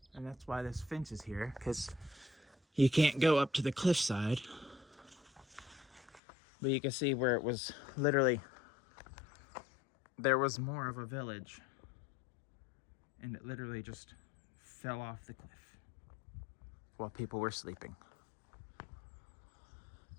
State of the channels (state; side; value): drops out; right; at 6.2 s